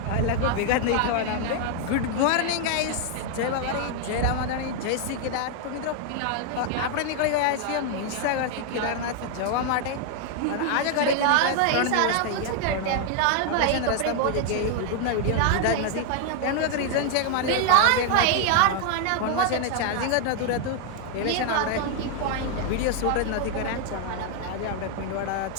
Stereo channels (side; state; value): both; different; correlation 0.00